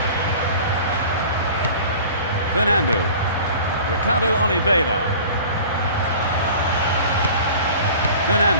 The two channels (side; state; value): both; inverted; correlation -0.42